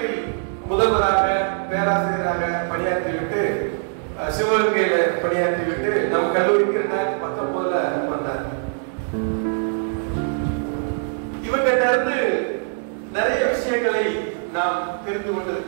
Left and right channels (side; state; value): left; silent; 62 dB below the other